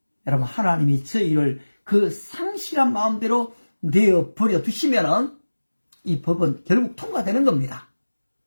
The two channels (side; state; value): both; inverted; correlation -1.00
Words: 여러분, 하나님이 저희를 그 상실한 마음대로 내어버려 두시면 이 법은 결국 통과되는 겁니다.